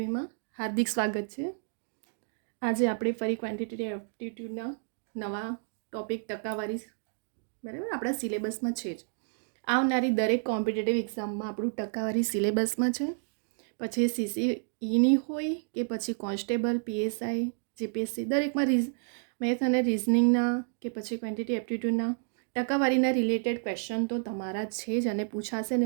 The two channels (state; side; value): silent; left; digital silence